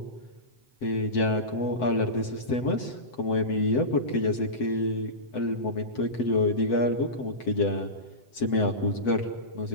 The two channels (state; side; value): late; right; 7.9 ms